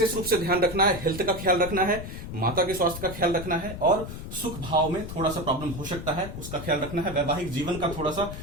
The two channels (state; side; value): noise; left; rumble, 9 dB below the sound